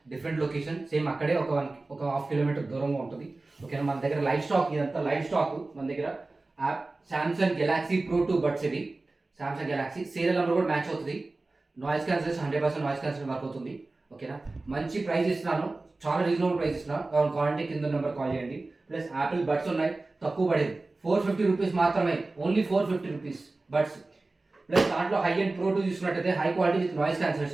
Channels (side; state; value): left; quieter; 3.2 dB